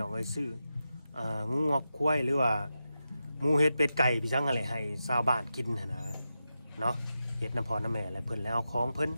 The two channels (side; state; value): both; inverted; correlation -0.89